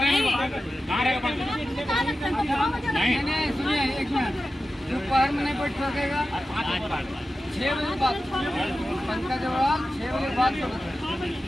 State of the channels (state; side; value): normal; both; correlation 0.93